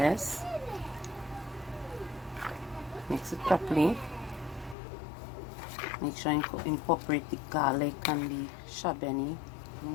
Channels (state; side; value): drops out; right; at 4.8 s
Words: mix it properly. Make sure you incorporate the garlic and the shabeni. You